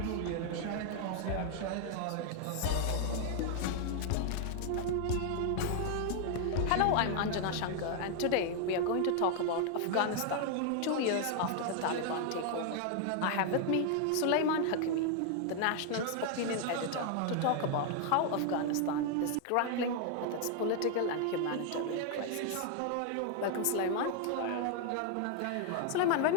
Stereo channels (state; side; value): different; both; correlation 0.00